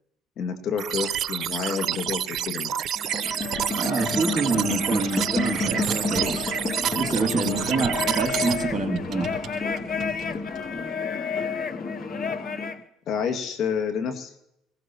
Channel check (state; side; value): normal; both; correlation 0.63